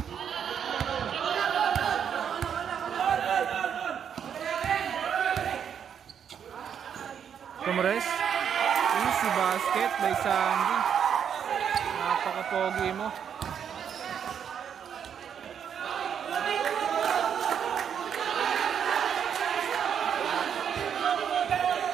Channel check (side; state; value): left; quieter; 8.1 dB